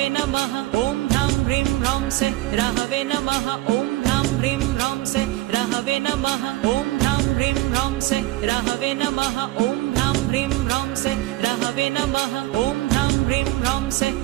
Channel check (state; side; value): quieter; left; 18.4 dB